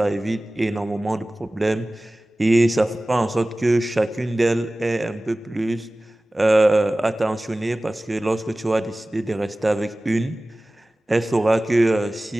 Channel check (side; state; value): both; normal; correlation 0.97